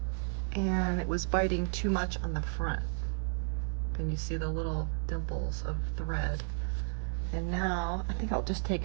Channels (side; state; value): left; silent; digital silence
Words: and it was biting too much on the front. And you see the little dimples of thread. And now I think I'll just take